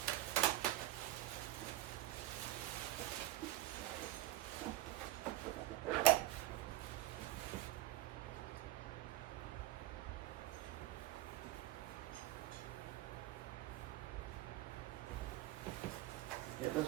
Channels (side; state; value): left; quieter; 15.6 dB